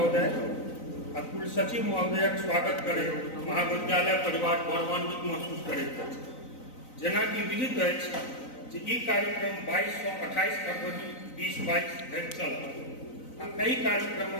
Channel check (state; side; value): late; right; 3.9 ms